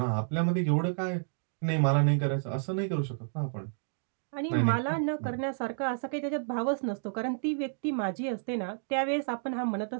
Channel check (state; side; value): silent; left; digital silence